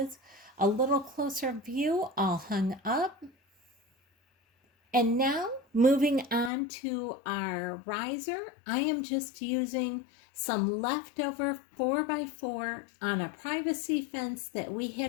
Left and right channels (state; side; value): drops out; right; at 6.5 s